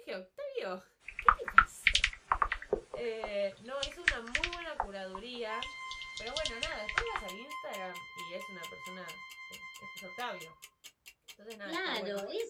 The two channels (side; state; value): both; identical; correlation 1.00